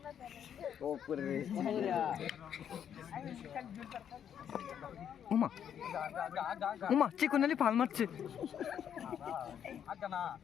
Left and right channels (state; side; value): quieter; right; 8.9 dB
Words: ওমা ওমা চিকুনালি ফাল মারছে